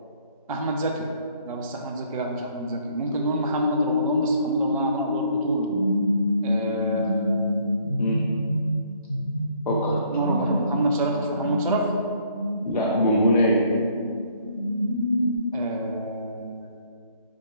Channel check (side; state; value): both; inverted; correlation -0.64